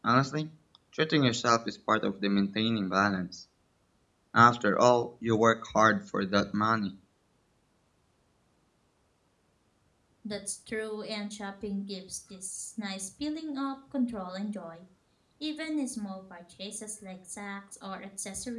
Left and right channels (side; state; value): both; identical; correlation 1.00